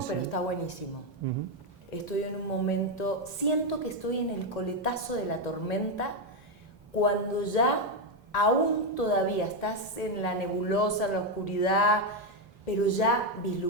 pero está buenísimo. Estoy en un momento, siento que estoy en el coletazo de la tormenta, cuando ya aún todavía estás en la nebulosa, en la oscuridad, pero ya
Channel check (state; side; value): normal; both; correlation 0.05